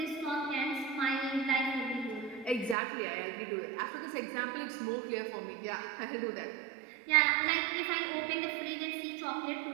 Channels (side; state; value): left; drops out; at 2.8 s